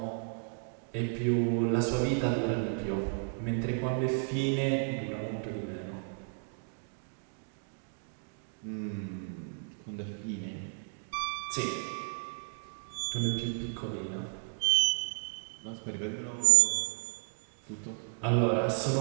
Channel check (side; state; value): left; silent; 56 dB below the other